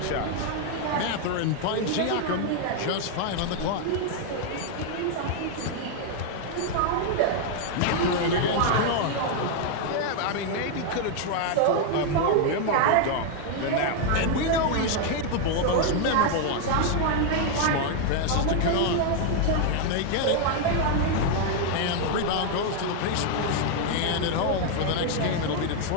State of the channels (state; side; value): different; both; correlation 0.00